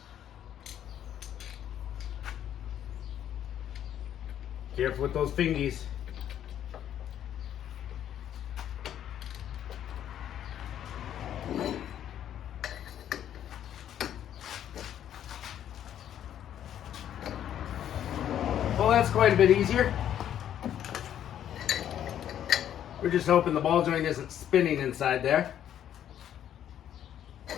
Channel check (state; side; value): quieter; right; 10.4 dB